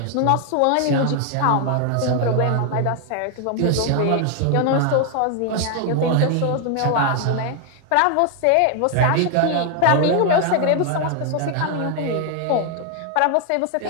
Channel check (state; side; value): different; both; correlation 0.00